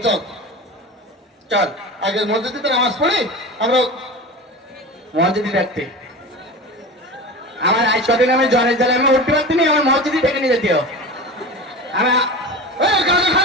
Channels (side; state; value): both; normal; correlation 0.31